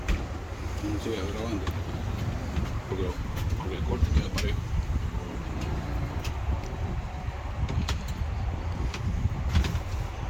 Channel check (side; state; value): both; identical; correlation 1.00